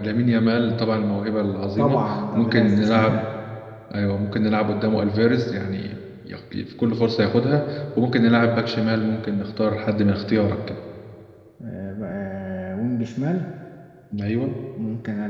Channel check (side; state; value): both; identical; correlation 1.00